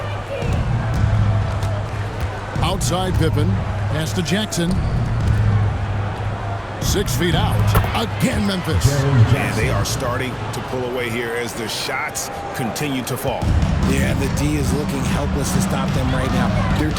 Outside Pippen, pass to Jackson. 6 feet out. Again, Memphis. Man, they are starting to pull away here as the shots continue to fall. Yeah, the D is looking helpless to stop them right now. They're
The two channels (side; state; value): both; identical; correlation 1.00